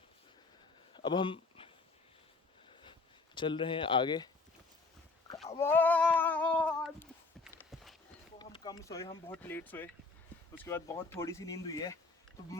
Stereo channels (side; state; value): right; quieter; 3.7 dB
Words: अब हम चल रहे हैं आगे। तो हम कम सोए, हम बहुत लेट सोए, उसके बाद बहुत थोड़ी सी नींद हुई है। तो